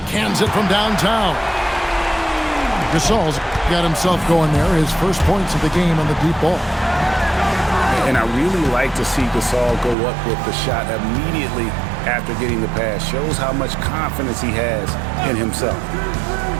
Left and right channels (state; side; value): drops out; left; at 10.0 s